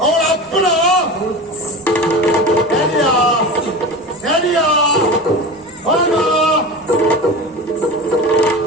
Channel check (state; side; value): normal; both; correlation 0.30